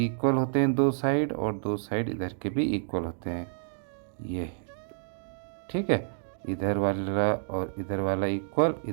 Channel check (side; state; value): left; silent; digital silence